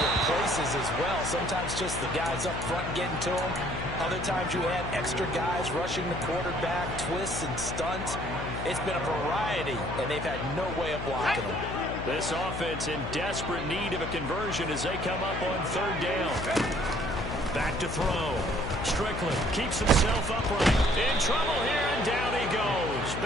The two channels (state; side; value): noise; left; hum, 6 dB below the sound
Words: places as well. Sometimes just the guys up front getting to them. Other times you add extra guys rushing the quarterback, twists and stunts. It's been a variety, and they've had no way of blocking them. This offense in desperate need of a conversion as they come up on 3rd down. Back to throw. Strickland keeps himself upright. In trouble here, and down he goes.